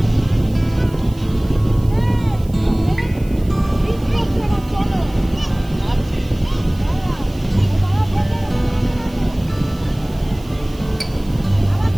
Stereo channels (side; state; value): right; noise; hiss, 24 dB below the sound